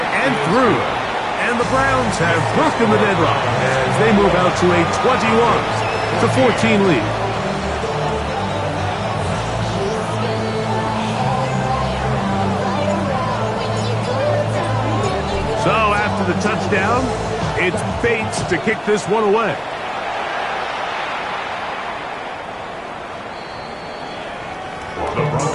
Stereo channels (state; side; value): identical; both; correlation 1.00